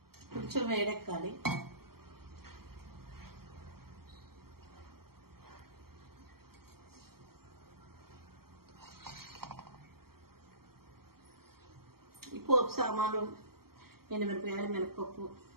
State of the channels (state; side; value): late; left; 0.94 ms